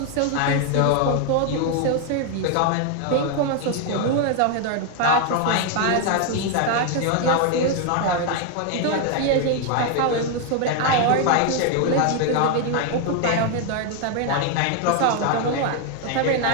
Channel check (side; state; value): both; different; correlation 0.01